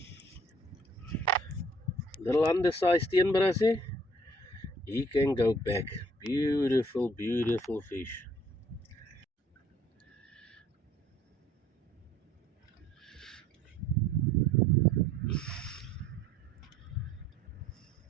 Little undersized steenbrassie. He can go back. Beautiful, beautiful fish.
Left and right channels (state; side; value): normal; both; correlation 0.58